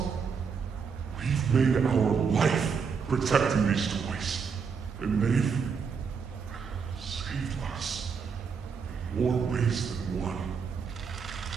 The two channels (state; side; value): quieter; left; 5.9 dB